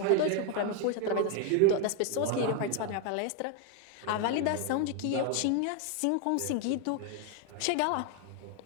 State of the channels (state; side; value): different; both; correlation 0.01